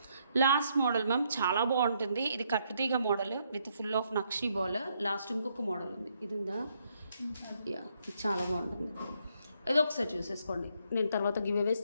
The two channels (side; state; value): both; inverted; correlation -0.74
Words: లాస్ట్ మోడల్ మ్యామ్ చాలా బాగుంటుంది. ఇది కట్టుతీగ model with full of nakshi ball. Last ఇంకొక మోడల్ ఉంది, ఇది ఉందా, యా ఇది చాలా బాగుంటుంది. ఇది ఒకసారి చూసేసుకోండి, నేను తర్వాత గివ్ అవేస్